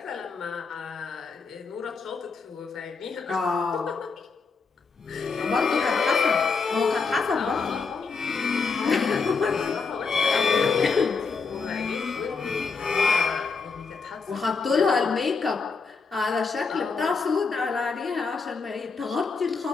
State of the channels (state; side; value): quieter; right; 4.8 dB